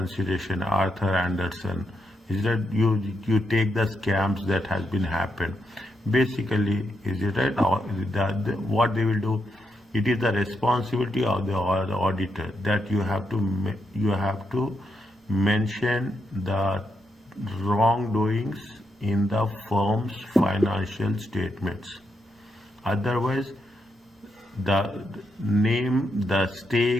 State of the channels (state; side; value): normal; both; correlation 0.82